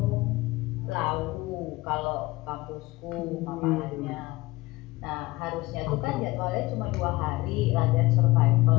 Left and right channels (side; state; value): right; quieter; 20.0 dB